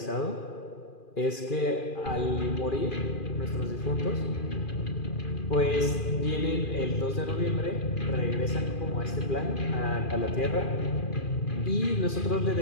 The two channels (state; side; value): late; right; 2.4 ms